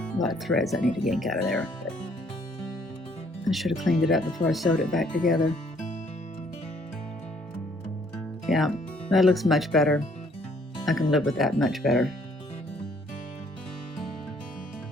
lot of threads I need to yank out of there. But I should have cleaned it up before I sewed it back together. Yeah, that looks much better. I can live with that much better.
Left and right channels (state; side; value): normal; both; correlation 0.64